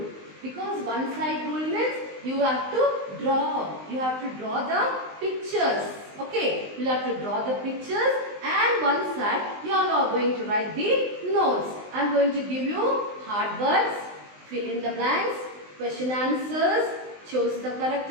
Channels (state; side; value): late; left; 19 ms